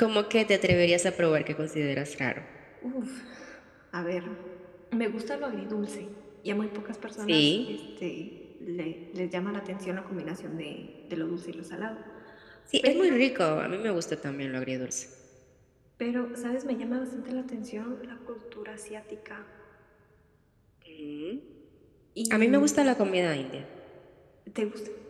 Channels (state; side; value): identical; both; correlation 1.00